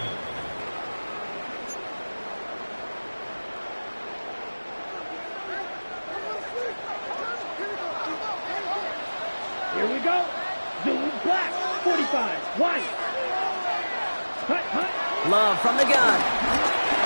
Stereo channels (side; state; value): both; inverted; correlation -1.00